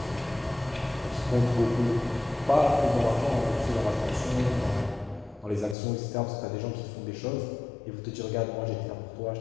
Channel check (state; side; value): drops out; right; at 5.8 s